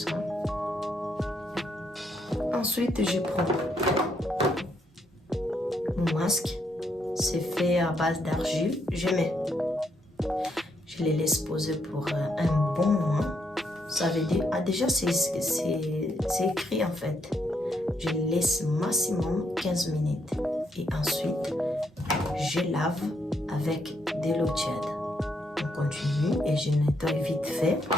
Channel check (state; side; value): normal; both; correlation 0.75